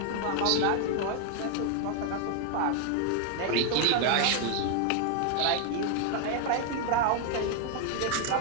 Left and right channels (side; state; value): both; different; correlation 0.00